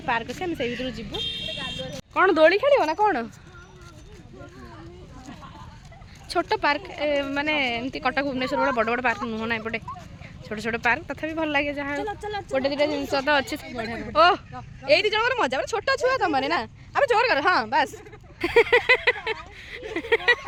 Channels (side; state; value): both; identical; correlation 1.00